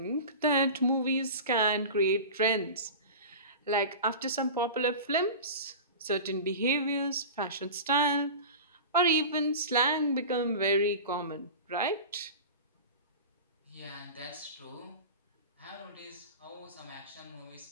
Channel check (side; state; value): both; inverted; correlation -0.32